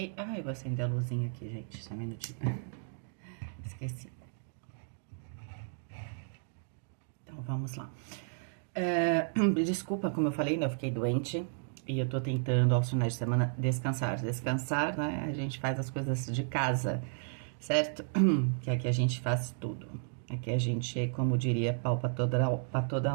Ah, eu vou acender a luzinha aqui, gente, só um minutinho. Esqueci. Então, vamos lá. Desculpa, como eu falei, né, eu fiquei doente e eu tô tentando, aos finais de semana, descansar. Descansar, né, a gente faz as coisas de casa, certo? Que aqui a gente faz tudo. Aqui a gente, como diria, pau pra toda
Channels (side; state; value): left; silent; digital silence